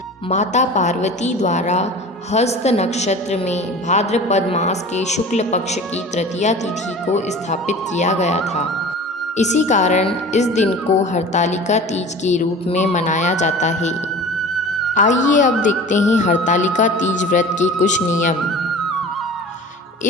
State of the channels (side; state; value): both; normal; correlation 0.39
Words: माता पार्वती द्वारा हस्त नक्षत्र में भाद्रपद मास के शुक्ल पक्ष की तृतीया तिथि को स्थापित किया गया था। इसी कारण इस दिन को हरतालिका तीज के रूप में मनाया जाता है। आइए अब देखते हैं हरतालिका तीज व्रत के कुछ नियम।